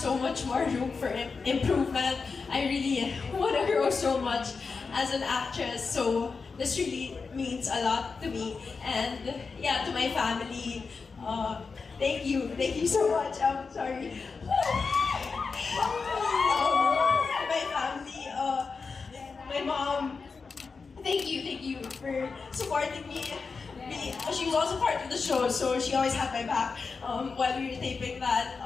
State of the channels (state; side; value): quieter; right; 4.8 dB